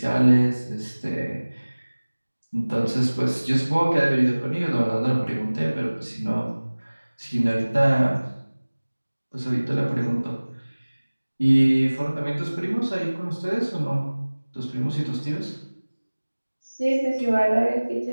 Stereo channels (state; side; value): inverted; both; correlation -1.00